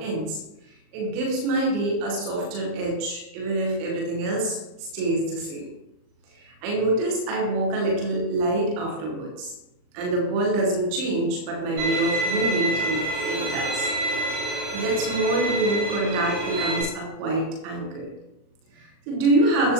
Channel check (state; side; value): late; left; 39 ms